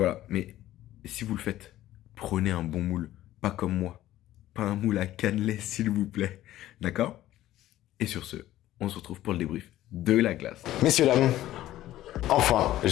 mais si vous le faites prenez un bon moule, pas comme moi. Pas un moule à cannelé, s'il vous plaît. D'accord? Et sur ce, on se retrouve pour le débrief de la glace. Messieurs, dames, enfin,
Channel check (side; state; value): right; quieter; 14.2 dB